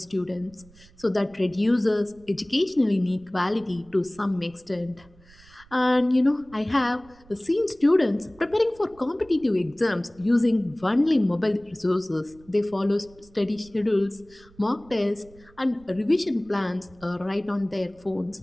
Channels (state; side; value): noise; right; rumble, 26 dB below the sound